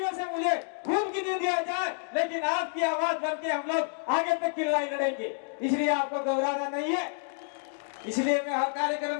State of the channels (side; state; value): right; silent; 58 dB below the other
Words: से मुझे खून की नींद आ जाए, लेकिन आपकी आवाज बन के हम लोग आगे तक की लड़ाई लड़ेंगे। इसलिए आपको घबराना नहीं है। इसलिए मैं हर कार्यक्रम